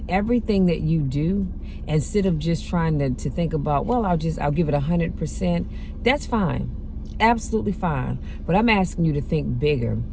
everything that you do, instead of just trying to think about, well, I'll give it 100%. That's fine. Absolutely fine. But I'm asking you to think bigger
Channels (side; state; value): both; identical; correlation 1.00